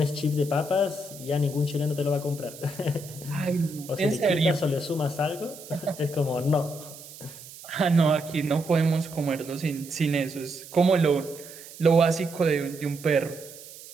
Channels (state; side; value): noise; right; hiss, 16 dB below the sound